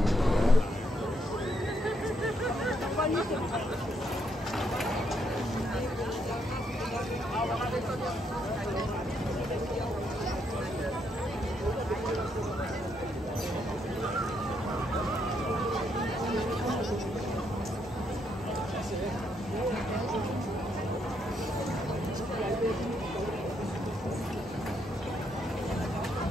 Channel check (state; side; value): normal; both; correlation 0.75